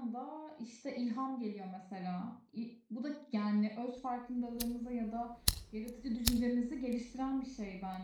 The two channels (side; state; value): both; identical; correlation 1.00